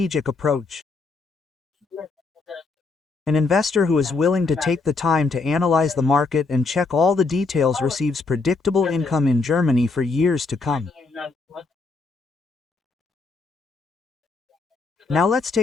approach. An investor who is willing to take the time to analyze the market and check all the details receives predictable income in Germany for years to come. Now let's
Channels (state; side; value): quieter; right; 4.0 dB